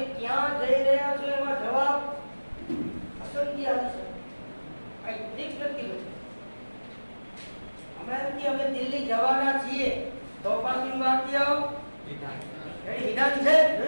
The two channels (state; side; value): inverted; both; correlation -1.00